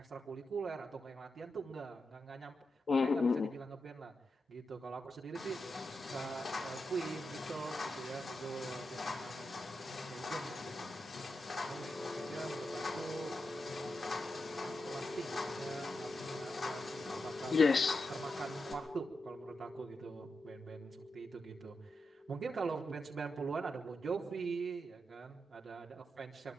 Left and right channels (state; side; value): normal; both; correlation 0.88